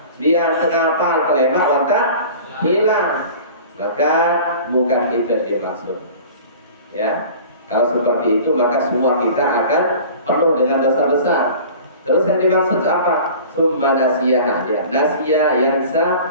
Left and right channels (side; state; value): both; inverted; correlation -0.42